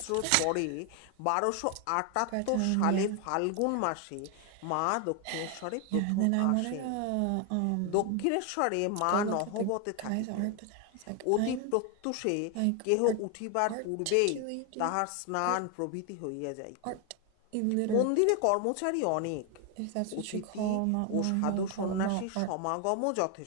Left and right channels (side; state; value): both; different; correlation 0.01